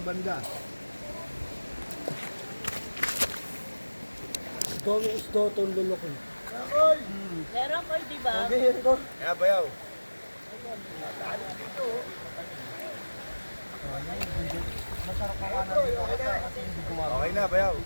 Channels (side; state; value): both; inverted; correlation -1.00